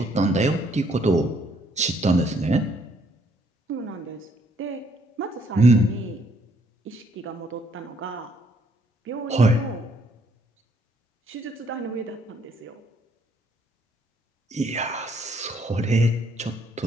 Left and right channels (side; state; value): both; normal; correlation 0.68